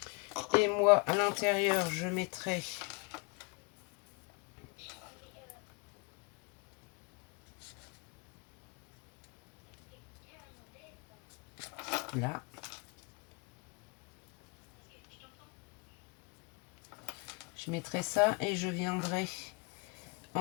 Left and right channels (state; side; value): quieter; right; 30.4 dB